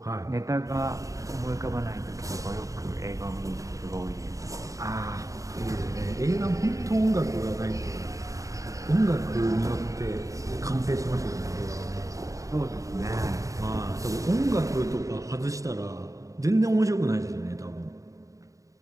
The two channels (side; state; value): left; late; 0.16 ms